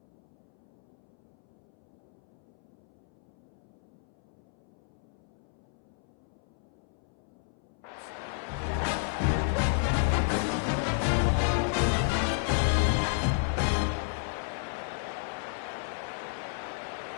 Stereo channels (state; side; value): silent; right; 56 dB below the other